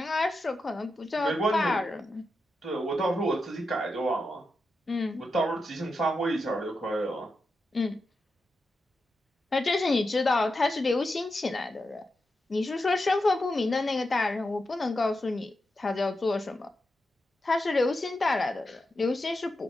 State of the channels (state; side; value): normal; both; correlation 0.88